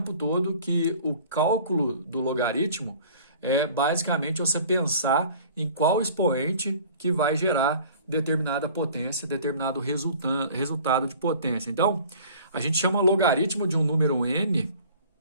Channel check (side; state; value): both; inverted; correlation -0.48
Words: todo, que o cálculo do logaritmo é basicamente você pensar em qual expoente que vai gerar determinada potência, determinado resultado de potência. Então, a gente chama logaritmo de um número n